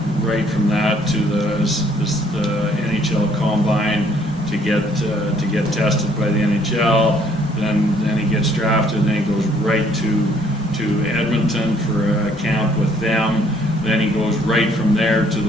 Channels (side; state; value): both; normal; correlation 0.64